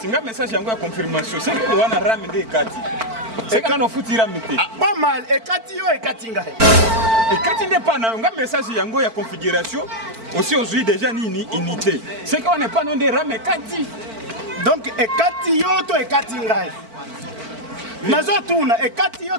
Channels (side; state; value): left; late; 4.5 ms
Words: Nga message yango ya confirmation. C'est que wana Rame nde kati. C'est quand on fout Rame te. Pas mal. Et kati yo et kati nga. Et kati nde pas na nga message yango ya configuration. Aussi aujourd'hui déjà ni unité. C'est qu'on n'est pas non des Rame kati. Donc et kati yo to et kati nga. Nazo tuna et kati yo